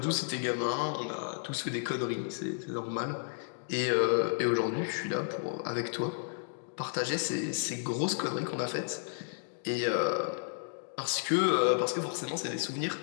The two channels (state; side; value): silent; right; digital silence